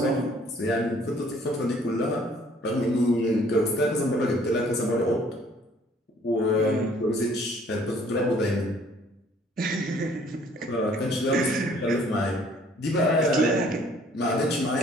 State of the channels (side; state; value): both; normal; correlation 0.58